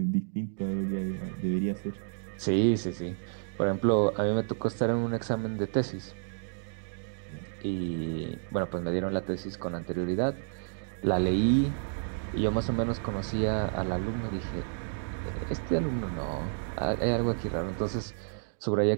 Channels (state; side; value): silent; left; digital silence